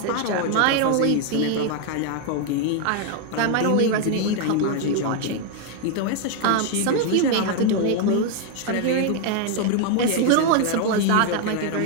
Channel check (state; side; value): different; both; correlation 0.01